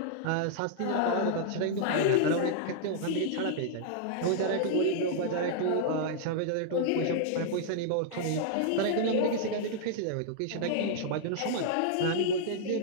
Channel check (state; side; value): different; both; correlation -0.01